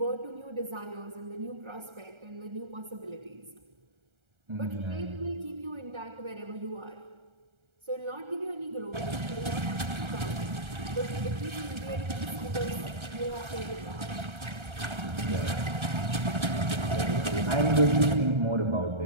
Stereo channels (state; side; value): late; left; 1.3 ms